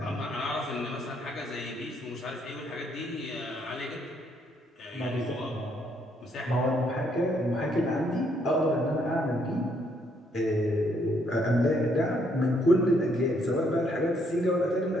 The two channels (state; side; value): normal; both; correlation 0.71